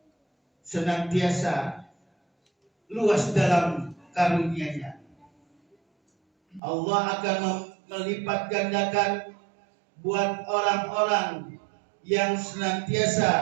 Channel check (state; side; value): drops out; left; at 6.6 s